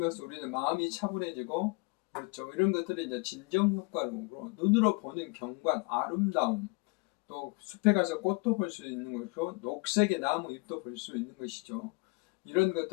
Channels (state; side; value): quieter; right; 30.3 dB